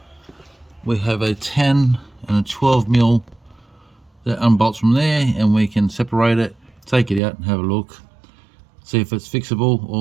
we have a 10 and a 12mm that unbolts from there, and we can separate it, take it out and have a look, see if it's fixable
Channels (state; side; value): drops out; left; at 7.2 s